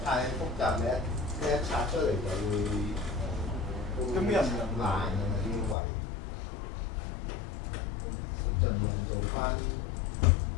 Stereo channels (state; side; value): drops out; right; at 5.8 s